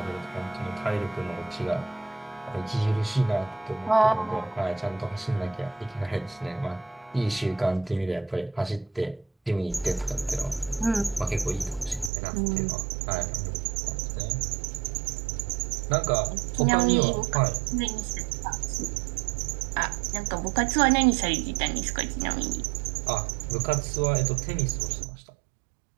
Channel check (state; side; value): drops out; left; at 12.1 s